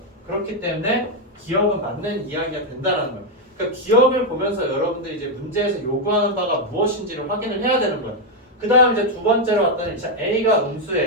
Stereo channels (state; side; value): normal; both; correlation 0.02